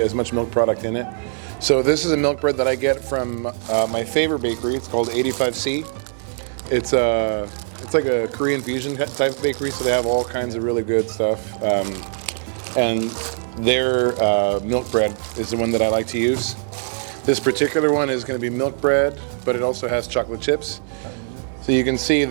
much milk product in it. So this is a milk bread that I get from my favorite bakery. It's called 85C. It's like a Korean fusion type of bakery, so they have all kinds of really good stuff. And their milk bread is the one that I like to use. This particular one is going to be milk bread, but it also has chocolate chips. So you can see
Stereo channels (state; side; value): silent; left; digital silence